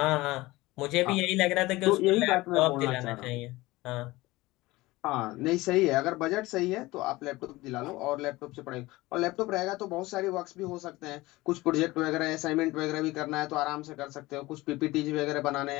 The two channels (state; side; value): quieter; right; 19.8 dB